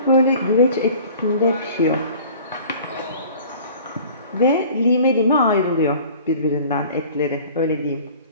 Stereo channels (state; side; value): inverted; both; correlation -0.46